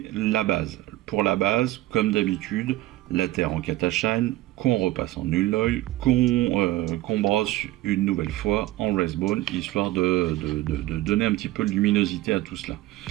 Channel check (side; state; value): left; quieter; 17.0 dB